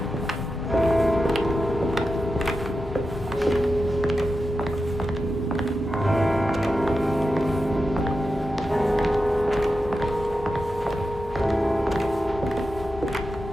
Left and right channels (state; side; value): normal; both; correlation 0.90